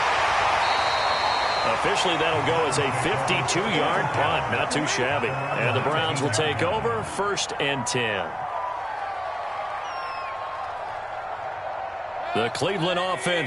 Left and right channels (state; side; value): identical; both; correlation 1.00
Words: Officially, that'll go as a 52-yard punt. Not too shabby. And the Browns will take over 1st and 10. The Cleveland